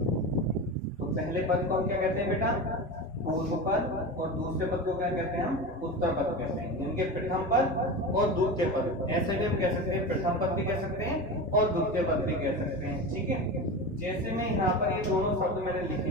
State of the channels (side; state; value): both; normal; correlation 0.25